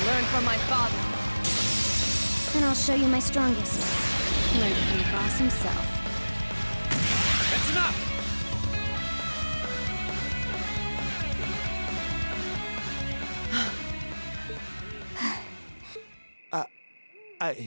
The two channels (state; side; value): inverted; both; correlation -1.00